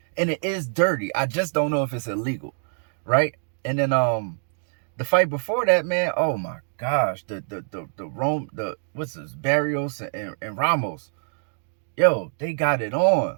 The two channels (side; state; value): left; silent; digital silence